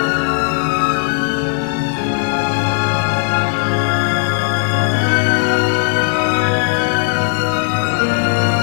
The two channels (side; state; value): right; silent; digital silence